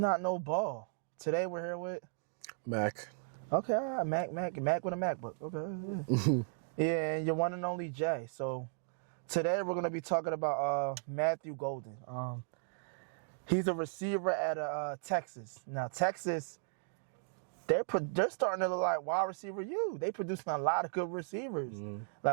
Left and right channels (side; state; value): left; silent; digital silence